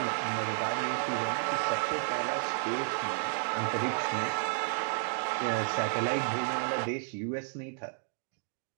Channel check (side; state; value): left; silent; digital silence